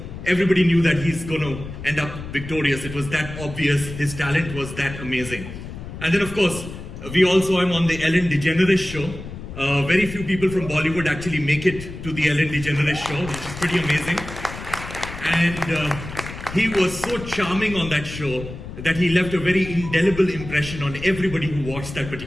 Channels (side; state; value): left; noise; rumble, 11 dB below the sound